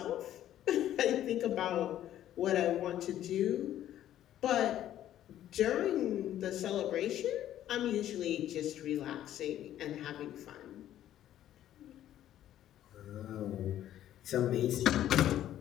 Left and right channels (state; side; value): quieter; right; 12.0 dB